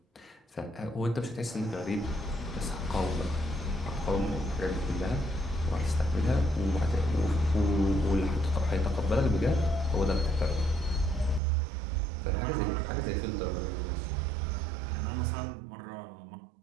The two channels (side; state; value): left; drops out; at 11.4 s